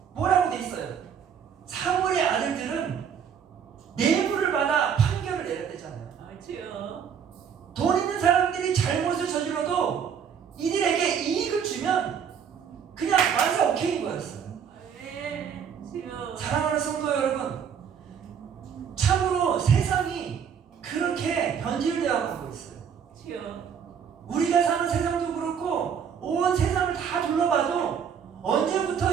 뭐라고 돼 있어요? 사무엘의 아들들은 뇌물을 받아 판결을 내렸대잖아요. 그렇지요. 돈 있는 사람들이 잘못을 저질러도 이들에게 이익을 주면 그냥 완전 오케이인 거였어요. 아멘. 그렇지요. 사랑하는 성도 여러분, 참으로 세상이 그렇게 변질되어 가고 있어요. 그렇지요. 우리가 사는 세상도 그렇고 온 세상을 다 둘러봐도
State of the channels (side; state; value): left; quieter; 7.6 dB